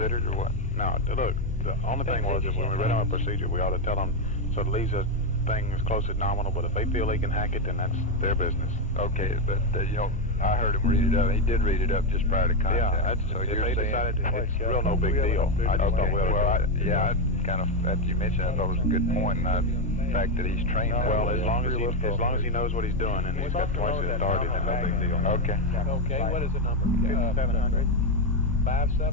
or what? No, look, the only thing was if when we read our procedure, we ought to tell them, so it leaves us things close to nominal, but if they feel they can hack it, then that's their business. Okay, but you know, I heard him read it up. He did read it up just prior to contact. Yeah, that's, so if you're they saying, decided it's real no big deal. I just thought, I kind of, after you mentioned it, I thought it was a good point, and the fact that he's trained that well, way. as long as he knows what he's doing and he's got twice his authority, then no big deal. Okay. Okay, what is the number? 700.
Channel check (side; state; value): both; normal; correlation 0.07